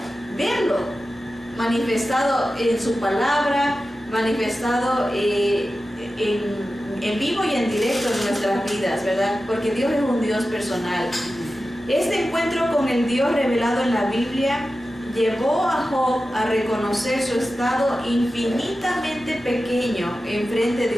manifestado en su palabra, manifestado en vivo y en directo en nuestras vidas, ¿verdad? Porque Dios es un Dios personal. Este encuentro con el Dios revelado en la Biblia llevó a Job a reconocer su estado infinitamente pequeño en frente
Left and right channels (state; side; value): normal; both; correlation 0.93